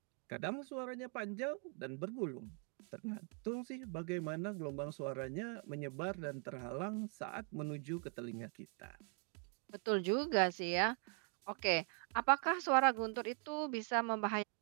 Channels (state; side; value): quieter; left; 39.3 dB